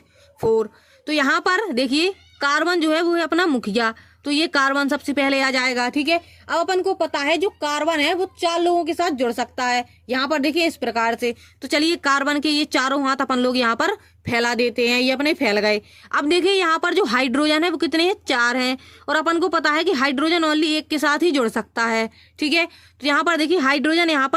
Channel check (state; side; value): identical; both; correlation 1.00